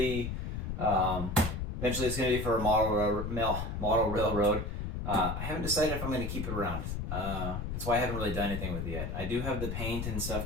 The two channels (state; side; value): noise; left; rumble, 3 dB below the sound